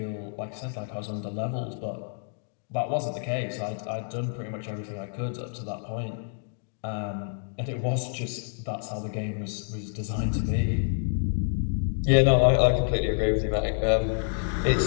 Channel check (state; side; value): silent; right; digital silence